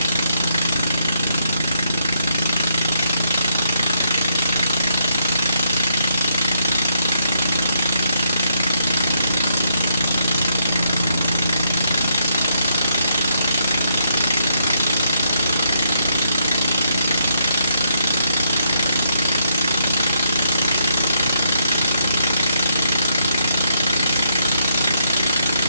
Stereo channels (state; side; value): inverted; both; correlation -0.76